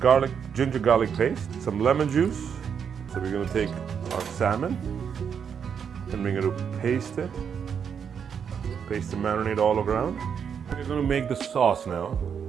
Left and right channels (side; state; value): left; quieter; 7.3 dB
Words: ginger garlic paste, some lemon juice. So we're going to take our salmon and we're going to paste it. Paste the marinade all around. We're going to make the sauce now,